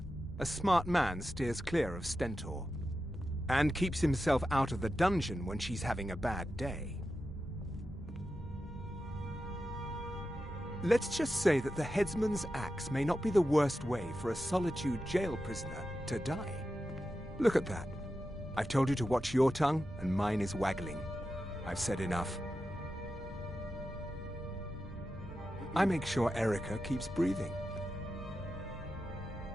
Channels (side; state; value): both; normal; correlation 0.91